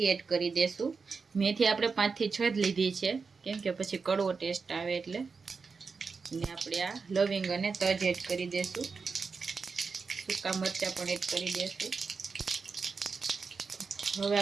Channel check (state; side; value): quieter; left; 4.9 dB